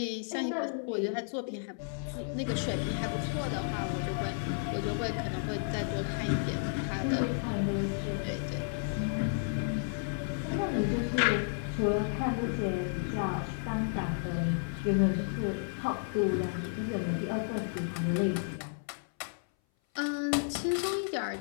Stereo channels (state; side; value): silent; right; 56 dB below the other